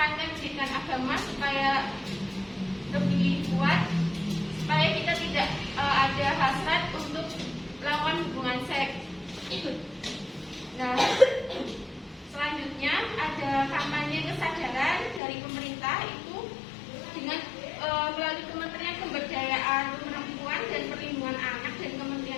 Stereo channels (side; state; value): right; drops out; at 15.2 s